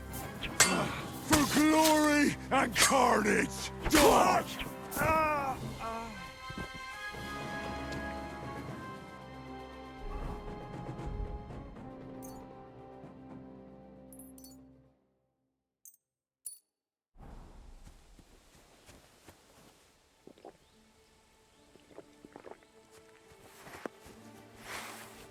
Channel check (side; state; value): both; identical; correlation 1.00